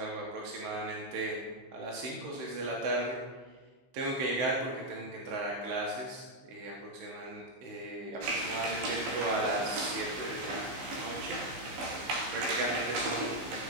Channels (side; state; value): left; late; 15 ms